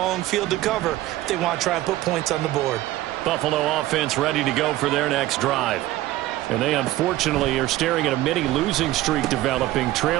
field to cover if they want to try and put points on the board. Buffalo offense ready to go for their next drive. And they unfortunately are staring at a mini losing streak developing,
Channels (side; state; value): left; quieter; 15.9 dB